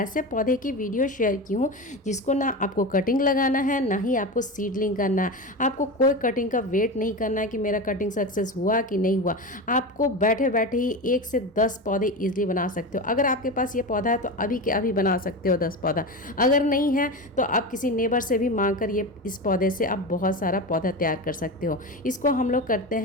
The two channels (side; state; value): both; normal; correlation 0.23